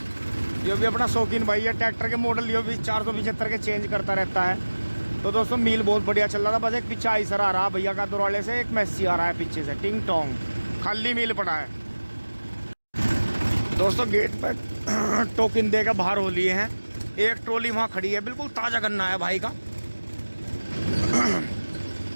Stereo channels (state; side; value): inverted; both; correlation -1.00